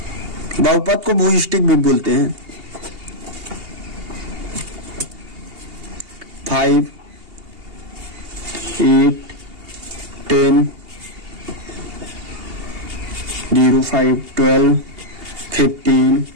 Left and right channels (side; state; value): left; late; 2.8 ms